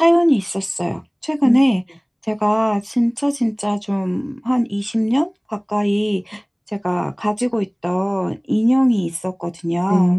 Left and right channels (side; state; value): both; identical; correlation 1.00